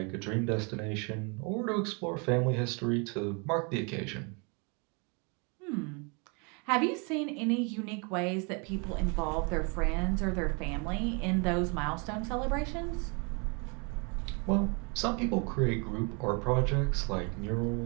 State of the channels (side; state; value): left; quieter; 33.5 dB